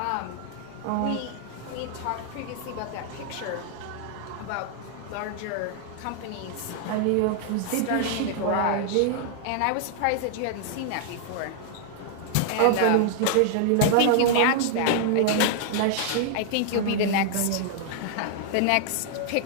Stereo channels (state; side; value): different; both; correlation 0.00